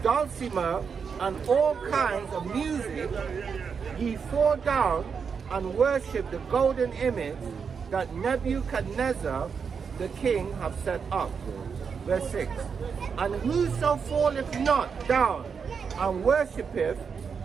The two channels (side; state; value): left; quieter; 6.1 dB